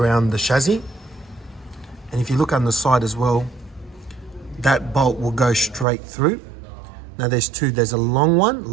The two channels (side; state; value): left; drops out; at 5.9 s